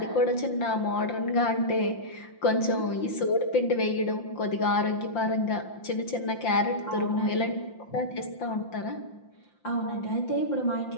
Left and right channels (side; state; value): right; late; 5.7 ms